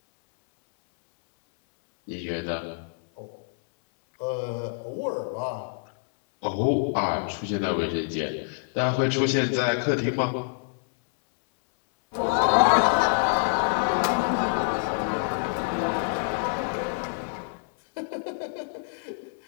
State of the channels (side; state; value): right; silent; 60 dB below the other